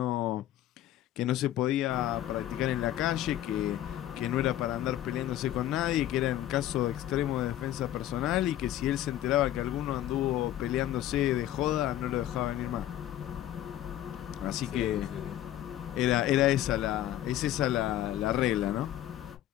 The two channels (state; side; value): quieter; right; 12.8 dB